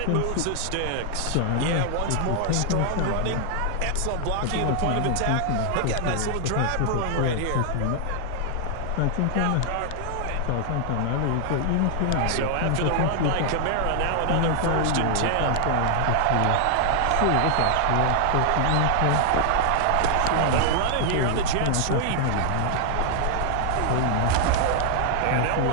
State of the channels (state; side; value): different; both; correlation 0.00